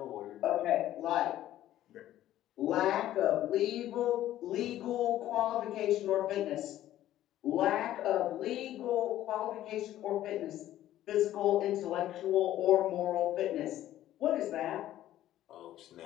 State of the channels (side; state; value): right; quieter; 13.2 dB